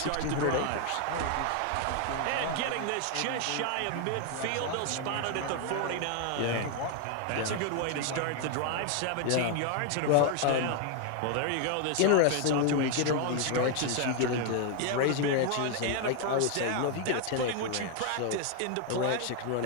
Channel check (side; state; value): both; different; correlation 0.00